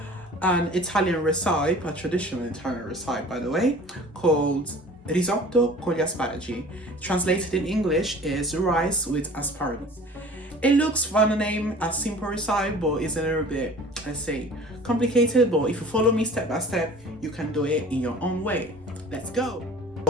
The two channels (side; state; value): both; normal; correlation 0.45